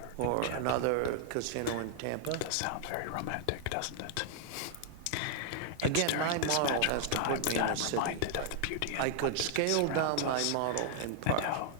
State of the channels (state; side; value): different; both; correlation -0.01